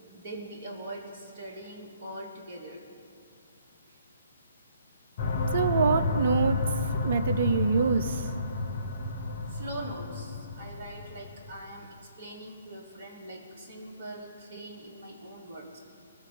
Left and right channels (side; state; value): both; inverted; correlation -0.64